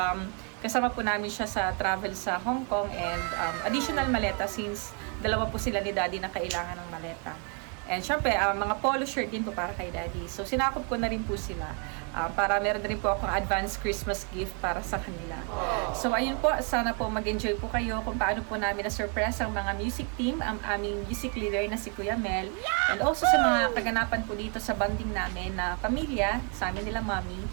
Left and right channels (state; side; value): quieter; left; 38.2 dB